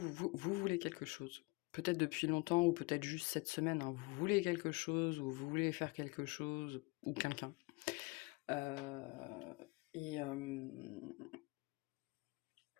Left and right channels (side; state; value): right; quieter; 26.1 dB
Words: voulez quelque chose. Peut-être depuis longtemps, ou peut-être juste cette semaine, hein. Vous voulez quelque chose, ou vous voulez faire quelque chose, ou quelqu'un.